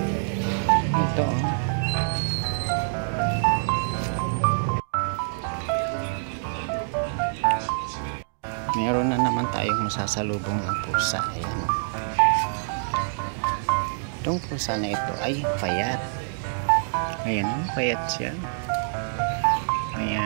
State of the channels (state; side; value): silent; left; digital silence